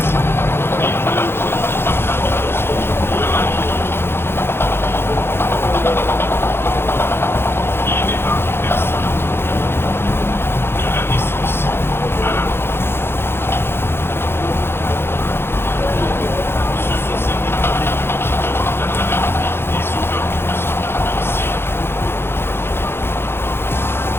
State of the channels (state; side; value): late; right; 0.11 ms